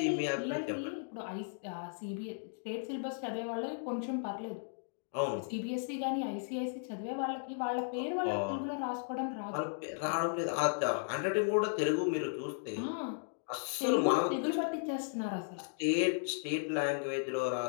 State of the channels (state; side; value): silent; right; digital silence